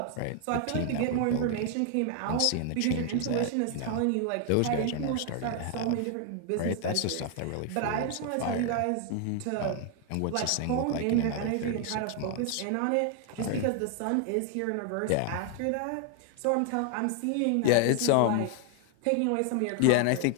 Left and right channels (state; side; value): different; both; correlation 0.00